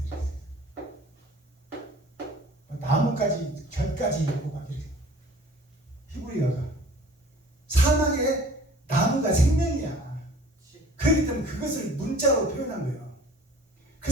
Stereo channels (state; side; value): normal; both; correlation 0.48